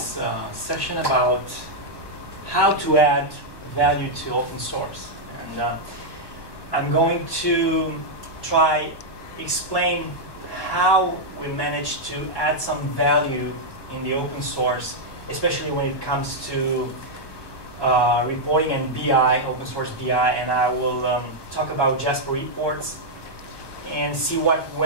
session about how to add value to open source. And I'm going to try explain how we managed to add some value in the open source, especially when it comes to reporting and BI, open source BI, and I will talk about JasperReports and see what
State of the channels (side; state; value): right; late; 1.2 ms